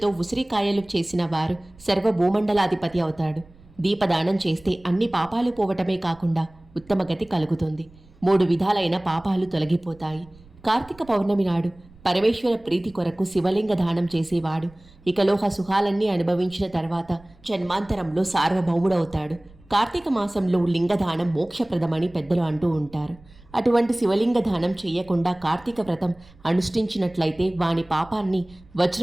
ఉసిరికాయలు చేసిన వారు సర్వభూమండలాధిపతి అవుతాడు. దీపదానం చేస్తే అన్ని పాపాలు పోవటమే కాకుండా ఉత్తమ గతి కలుగుతుంది. 3 విధాలైన పాపాలు తొలగిపోతాయి. కార్తీక పౌర్ణమి నాడు పరమేశ్వర ప్రీతి కొరకు శివలింగ దానం చేసేవాడు ఇకలోహ సుఖాలన్నీ అనుభవించిన తర్వాత జన్మాంతరంలో సార్వభౌముడవుతాడు. కార్తీక మాసంలో లింగదానం మోక్షప్రదమని పెద్దలు అంటూ ఉంటారు. అటువంటి శివలింగ దానం చేయకుండా కార్తీక వ్రతం అనుష్ఠించినట్లయితే వాని పాపాన్ని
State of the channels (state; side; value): noise; right; rumble, 25 dB below the sound